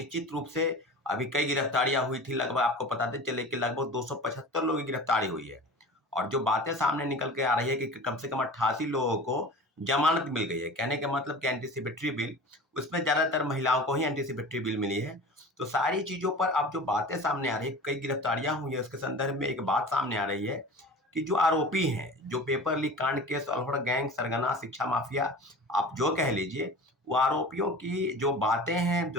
रूप से अभी कई गिरफ्तारियां हुई थी। लगभग आपको बताते चले कि लगभग 275 लोगों की गिरफ्तारी हुई है। और जो बातें सामने निकल के आ रही है कि कम से कम 88 लोगों को जमानत मिल गई है। कहने का मतलब कि एंटीसिपेटरी बिल, उसमें ज्यादातर महिलाओं को ही एंटीसिपेटरी बिल मिली है। तो सारी चीजों पर अब जो बातें सामने आ रही है, कई गिरफ्तारियां हुई है, उसके संदर्भ में एक बात सामने आ रही है कि जो आरोपी हैं, जो पेपर लीक कांड के सॉल्वर गैंग, सरगना, शिक्षा माफिया, आप जो कह लीजिए, वो आरोपियों की जो बातें हैं,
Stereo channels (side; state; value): both; normal; correlation 0.37